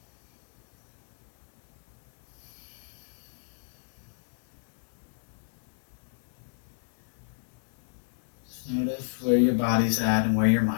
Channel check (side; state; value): right; silent; 58 dB below the other